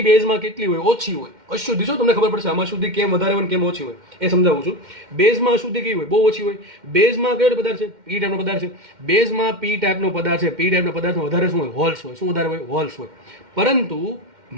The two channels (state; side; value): late; left; 2.1 ms